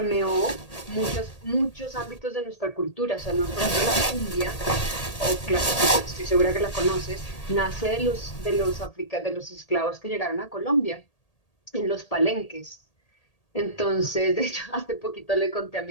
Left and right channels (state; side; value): late; right; 1.8 ms